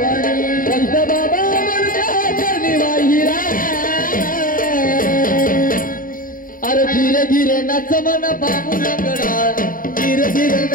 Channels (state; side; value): late; right; 0.40 ms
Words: संत बाबा म्हणता चरणी वाहिरा अरे धीरे धीरे नच मन बाबू लंगडा धीरे धीरे